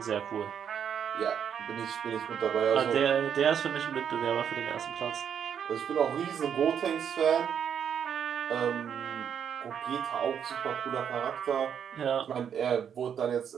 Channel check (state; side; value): quieter; left; 8.2 dB